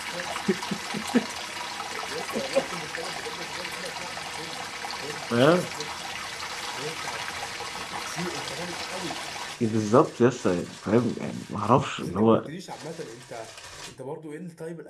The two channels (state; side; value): identical; both; correlation 1.00